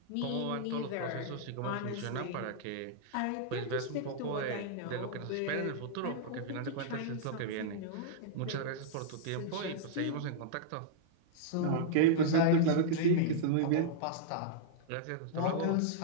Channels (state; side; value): different; both; correlation -0.02